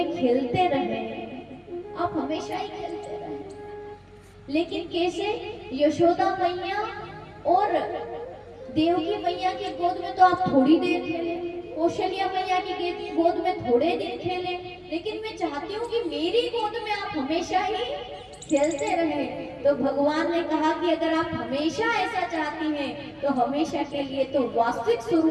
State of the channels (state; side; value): identical; both; correlation 1.00